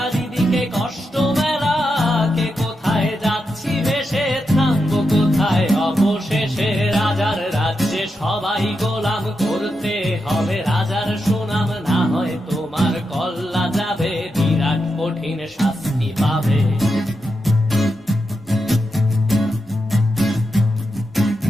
কষ্ট মেলা, কে কোথায় যাচ্ছি ভেসে, থামবো কোথায় অবশেষে। রাজার রাজ্যে সবাই গোলাম, করতে হবে রাজার সুনাম, না হয় তোমার কল্লা যাবে, বিরাট কঠিন শাস্তি পাবে।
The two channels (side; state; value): both; normal; correlation 0.86